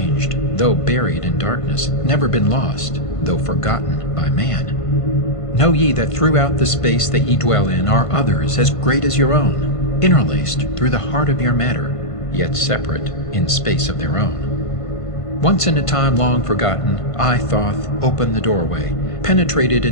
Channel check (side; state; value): right; late; 1.5 ms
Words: though buried in darkness, never been lost, though forgotten by man. Know ye that throughout the space that ye dwell in are others as great as your own, interlaced through the heart of your matter, yet separate in space of their own. Once in a time long forgotten, I, Thoth, opened the doorway, penetrated